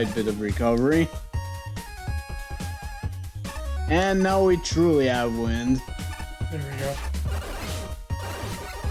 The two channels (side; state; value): both; identical; correlation 1.00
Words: bit of recovery. And now we truly have wind. There we go.